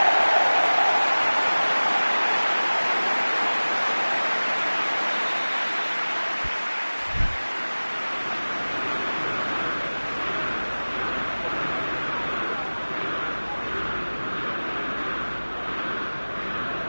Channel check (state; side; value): inverted; both; correlation -1.00